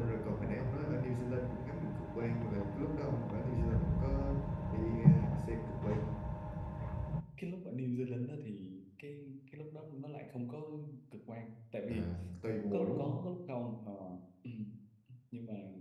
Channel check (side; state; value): both; identical; correlation 1.00